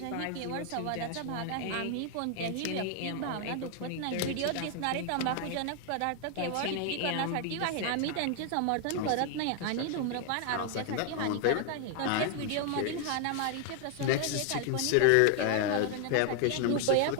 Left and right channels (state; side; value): different; both; correlation 0.00